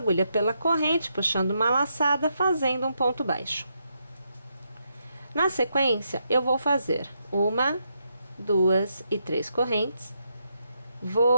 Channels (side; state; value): both; inverted; correlation -0.80